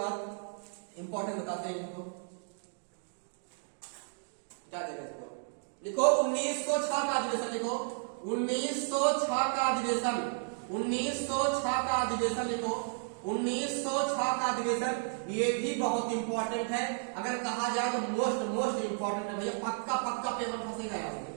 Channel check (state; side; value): silent; left; digital silence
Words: इंपॉर्टेंट बताते हैं इनको, क्या देगा इसको? लिखो 1906 का अधिवेशन। लिखो 1906 का अधिवेशन, 1906 का अधिवेशन लिखो। 1906 का अधिवेशन ये भी बहुत इंपॉर्टेंट है। अगर कहा जाए तो मोस्ट इंपॉर्टेंट है भैया। पक्का पेपर फंसेगा यहाँ पे,